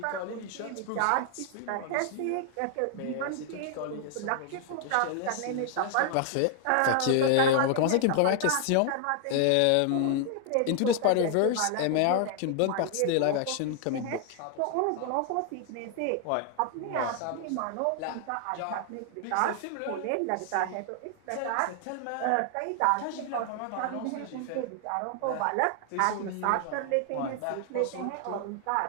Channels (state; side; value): different; both; correlation 0.00